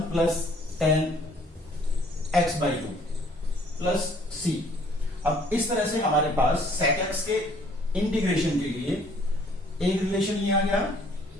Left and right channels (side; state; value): both; normal; correlation 0.60